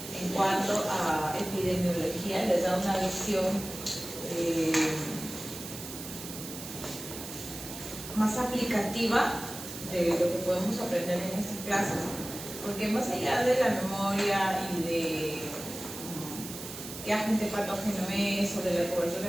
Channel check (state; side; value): noise; right; hiss, 10 dB below the sound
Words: en cuanto a epidemiología. Les da una visión más aplicativa de lo que podemos aprender en estas clases, porque más allá de la memoria y de qué agente patógeno es o de la cobertura